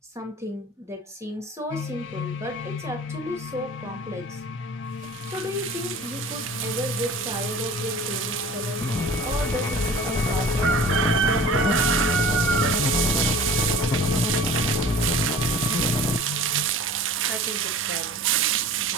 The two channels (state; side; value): normal; both; correlation 0.43